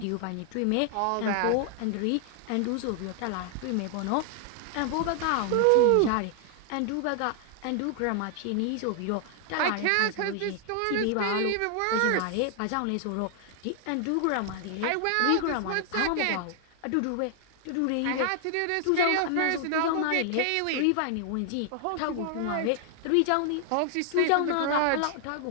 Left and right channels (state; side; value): different; both; correlation 0.00